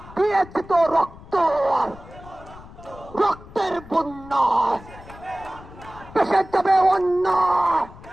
দিয়েছি তো রক্ত, রক্তের বন্যা পেশে যাবে অন্য।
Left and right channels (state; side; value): noise; left; rumble, 18 dB below the sound